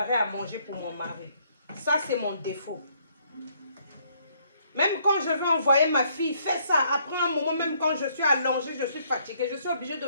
à manger pour mon mari. Ça, c'est mon défaut. Même quand je veux envoyer ma fille, fais ça. Après un moment, même quand je suis allongée, je suis fatiguée, je suis obligée de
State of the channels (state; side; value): inverted; both; correlation -0.68